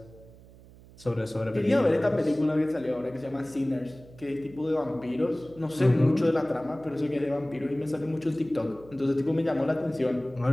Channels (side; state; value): right; noise; hum, 22 dB below the sound